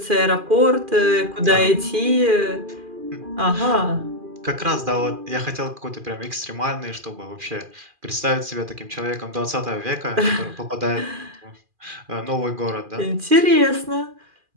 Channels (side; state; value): left; late; 2.4 ms